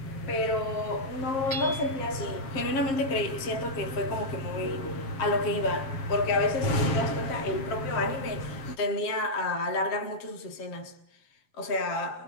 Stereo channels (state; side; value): late; right; 7.5 ms